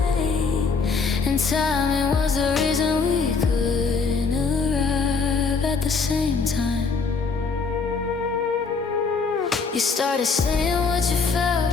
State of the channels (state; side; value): quieter; right; 4.8 dB